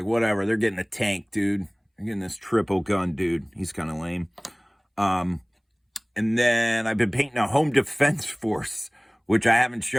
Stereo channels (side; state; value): both; identical; correlation 1.00